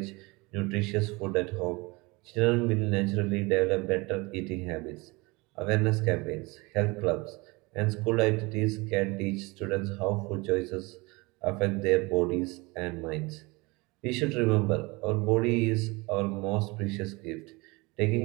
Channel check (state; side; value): quieter; left; 25.1 dB